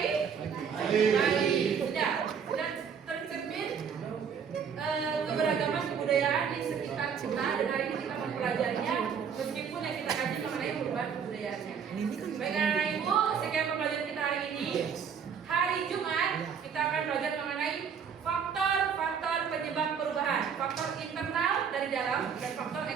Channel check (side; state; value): left; quieter; 7.0 dB